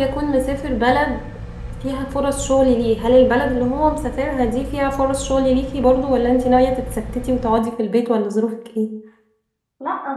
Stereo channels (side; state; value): both; identical; correlation 1.00